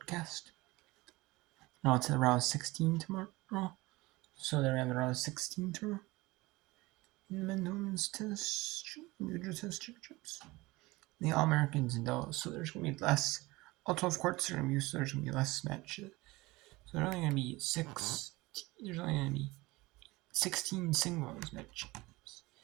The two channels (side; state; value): left; quieter; 21.3 dB